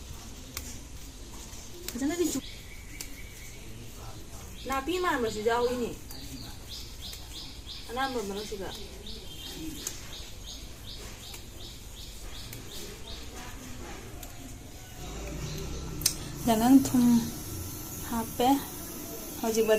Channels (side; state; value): both; identical; correlation 1.00